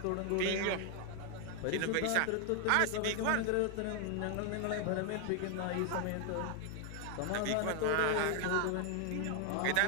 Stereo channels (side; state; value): both; different; correlation 0.00